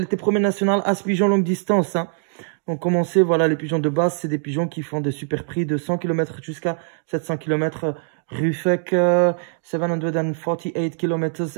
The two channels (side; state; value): left; silent; digital silence